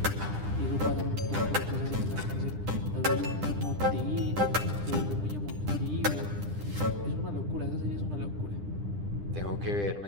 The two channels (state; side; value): late; left; 10 ms